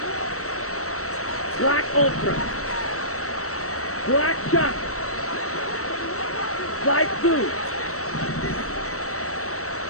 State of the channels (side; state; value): right; late; 0.64 ms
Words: Black Ultra. Black Shot. Light Blue.